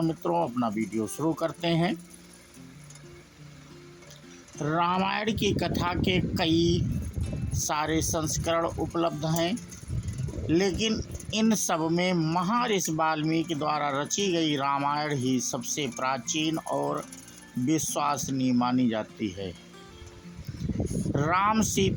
मित्रों अपना वीडियो शुरू करते हैं। रामायण की कथा के कई सारे संस्करण उपलब्ध हैं, लेकिन इन सब में महर्षि वाल्मीकि द्वारा रची गई रामायण ही सबसे प्राचीन और विश्वसनीय मानी जाती है। राम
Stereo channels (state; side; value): identical; both; correlation 1.00